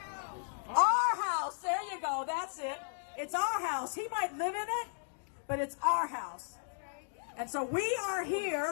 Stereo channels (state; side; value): silent; right; digital silence